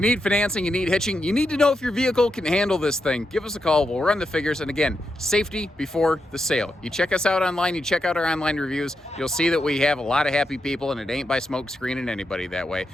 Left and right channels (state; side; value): normal; both; correlation 0.85